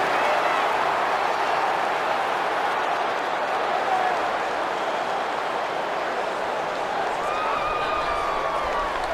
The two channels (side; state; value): both; identical; correlation 1.00